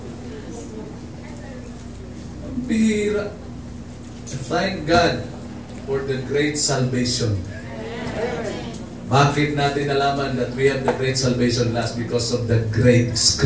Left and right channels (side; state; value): both; identical; correlation 1.00